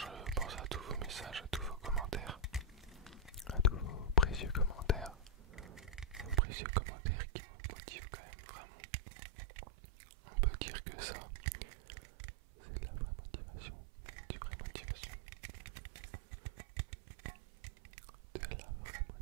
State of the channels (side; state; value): left; drops out; at 6.4 s